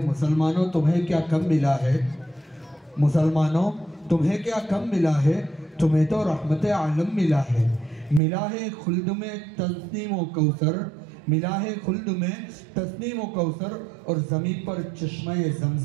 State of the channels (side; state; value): left; drops out; at 8.2 s